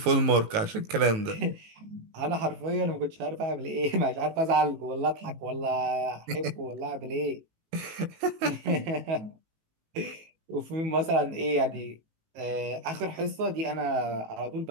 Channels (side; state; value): left; late; 18 ms